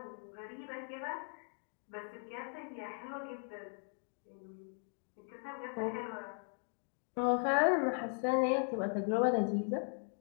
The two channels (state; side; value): silent; right; 52 dB below the other